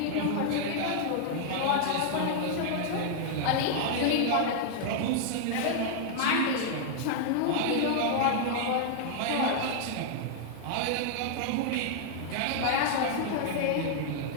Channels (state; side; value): different; both; correlation -0.01